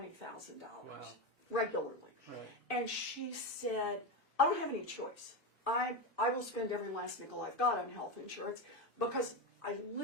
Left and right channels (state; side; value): normal; both; correlation 0.15